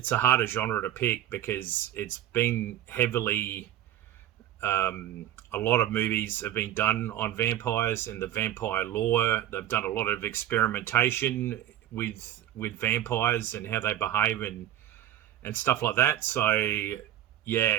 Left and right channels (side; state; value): left; quieter; 12.0 dB